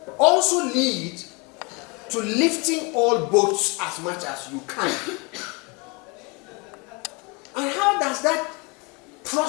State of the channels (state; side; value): quieter; right; 29.3 dB